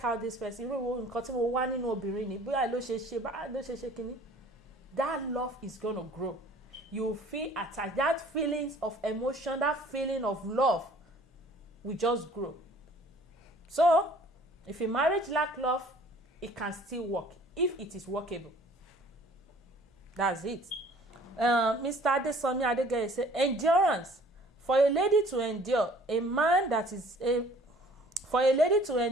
how this person irú nǹkan tí mo wá nínú obìnrin ni bóyá ló ṣe kíní. That love is gonna grow. You feel attached. That feelings of emotion, that feeling of love will just grow. So, if a marriage lack love, it can still work if it is workable. That's it. Mr. Adesomi Adegeye said, endurance. For a lady to endure a man that is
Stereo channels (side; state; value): both; normal; correlation 0.53